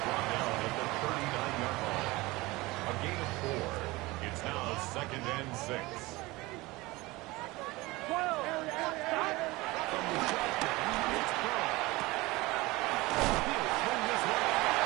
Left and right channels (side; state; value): left; quieter; 21.3 dB